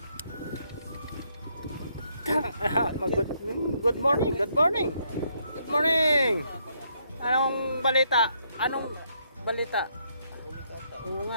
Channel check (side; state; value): both; inverted; correlation -0.73